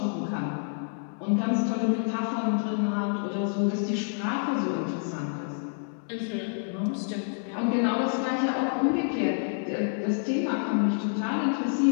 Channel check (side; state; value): right; silent; 59 dB below the other